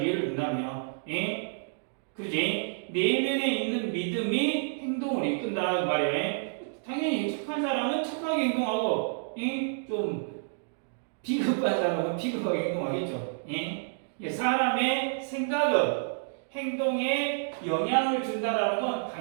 예를 든다면. 그러지? 내면에 있는 믿음이 행동을 이끈다 그 말이야. 당연히 착한 사람은 착하게 행동하고 좀 비겁한 사람은 비겁하게 행동하겠죠. 사람의 생각은 행동에 영향을 준다라는 건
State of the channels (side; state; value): left; silent; digital silence